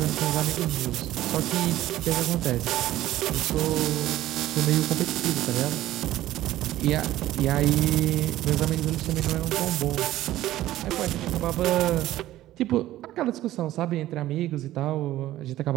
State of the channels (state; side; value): quieter; left; 14.6 dB